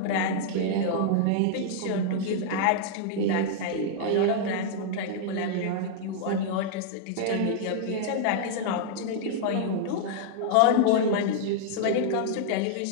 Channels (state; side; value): different; both; correlation -0.01